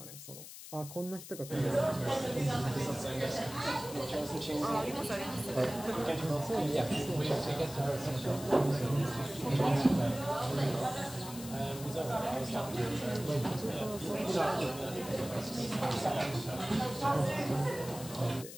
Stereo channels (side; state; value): left; noise; hiss, 13 dB below the sound